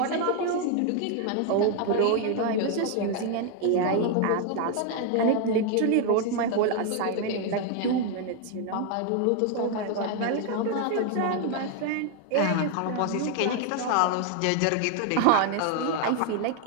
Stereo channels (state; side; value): different; both; correlation 0.01